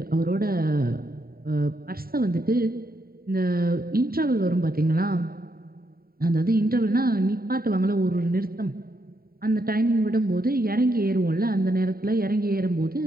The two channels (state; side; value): late; left; 0.43 ms